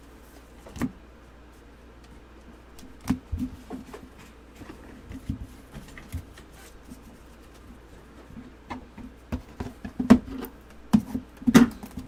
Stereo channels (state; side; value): identical; both; correlation 1.00